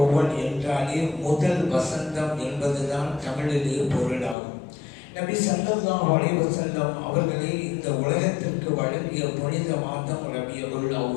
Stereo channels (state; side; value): drops out; right; at 4.4 s